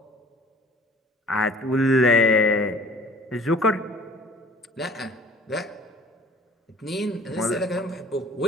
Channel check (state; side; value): normal; both; correlation 0.50